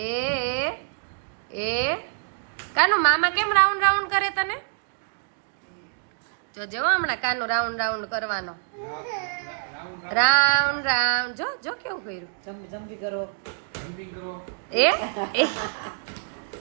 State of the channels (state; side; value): silent; left; digital silence